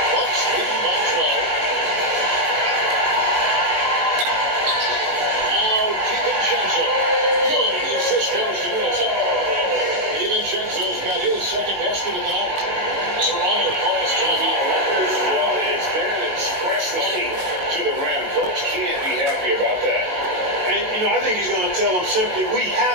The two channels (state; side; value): late; left; 18 ms